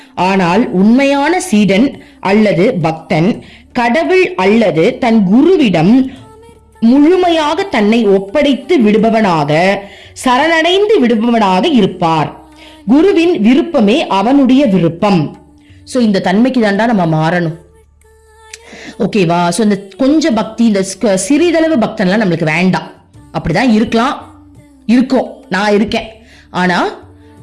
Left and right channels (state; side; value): identical; both; correlation 1.00